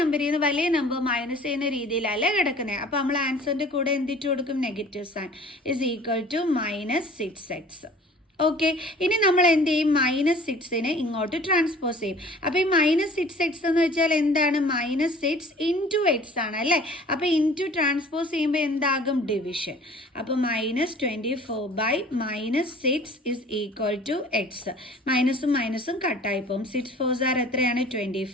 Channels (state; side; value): normal; both; correlation 0.48